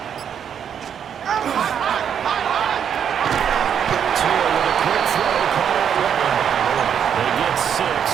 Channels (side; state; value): left; quieter; 8.3 dB